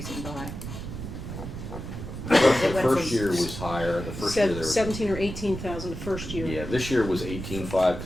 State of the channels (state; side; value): noise; right; rumble, 8 dB below the sound